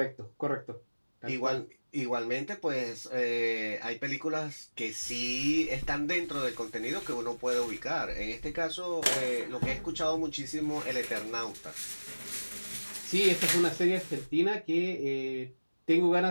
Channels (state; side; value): inverted; both; correlation -1.00